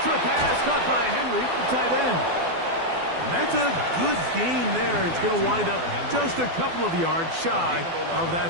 Short pass caught by Henry, the tight end. That's a good gain there. It's going to wind up just a couple of yards shy of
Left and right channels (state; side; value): late; left; 12 ms